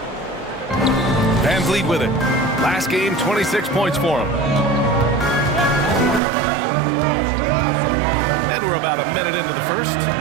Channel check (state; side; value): drops out; left; at 6.2 s